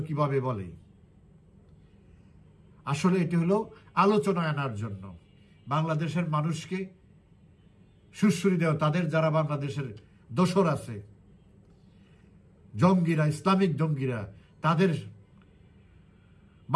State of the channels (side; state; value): both; identical; correlation 1.00